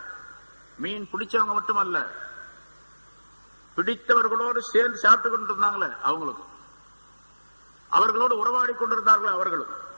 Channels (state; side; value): inverted; both; correlation -1.00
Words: மீன் பிடிச்சவங்க மட்டுமல்ல, பிடித்தவர்களோடு சேர்ந்து சாப்பிட்டு கொண்டிருந்தாங்களே அவங்களுக்கும், அவர்களோடு உறவாடி கொண்டிருந்தார்களே அவர்களும்